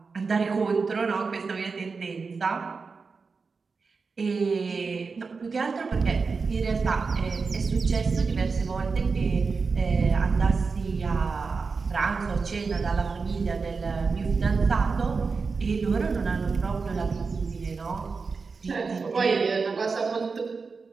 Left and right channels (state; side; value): quieter; left; 4.7 dB